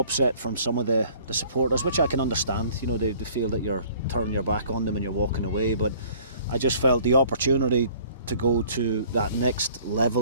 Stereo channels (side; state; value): both; inverted; correlation -0.53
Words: from some of the supporters, which I can understand. You know, they feel that you're turning your back on them and you're walking away, but I just felt the opportunity to go to that next